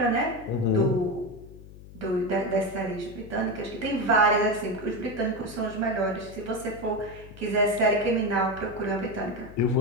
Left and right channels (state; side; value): noise; left; hum, 17 dB below the sound